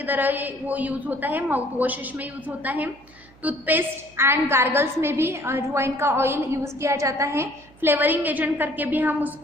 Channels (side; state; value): right; noise; hum, 27 dB below the sound